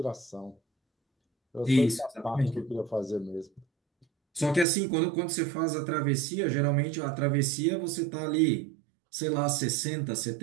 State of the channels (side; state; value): left; drops out; at 4.7 s